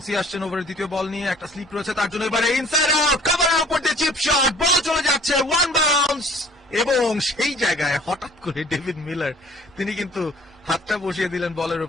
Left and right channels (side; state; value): both; normal; correlation 0.53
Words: আসছেন ওভারের দ্বিতীয় বল নিয়ে, একটা স্লিপ রয়েছে তার জন্য, এবারে ইনসাইড আউট, কভারের উপর দিয়ে চিপ শট, বল চলে যাচ্ছে, ওয়ান বাউন্স, এবং সেই জায়গায় হঠাৎ করে ডেভিড মিলার তিনি কিন্তু হাতটা বসিয়ে দিলেন বলের